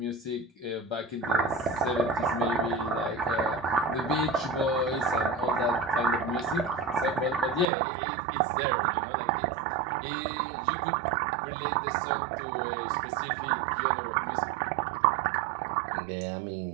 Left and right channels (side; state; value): left; drops out; at 7.7 s